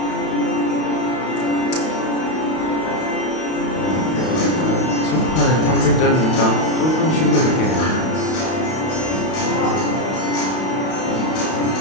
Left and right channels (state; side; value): late; right; 32 ms